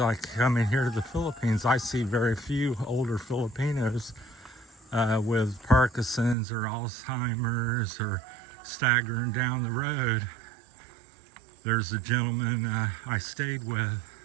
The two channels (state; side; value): drops out; left; at 6.4 s